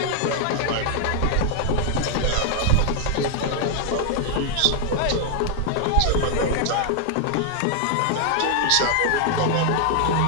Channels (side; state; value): both; different; correlation 0.00